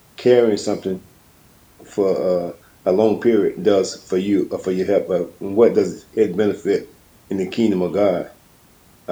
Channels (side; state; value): both; identical; correlation 1.00